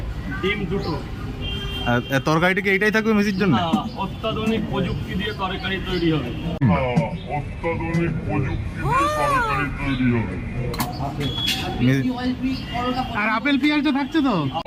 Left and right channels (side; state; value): both; identical; correlation 1.00